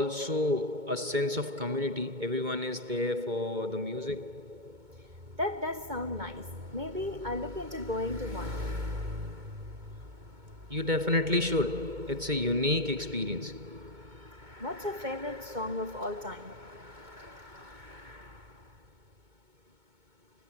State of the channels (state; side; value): late; left; 2.2 ms